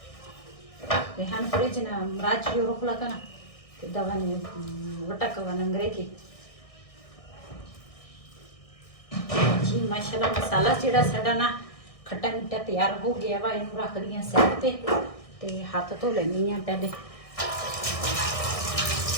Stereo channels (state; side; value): late; right; 1.6 ms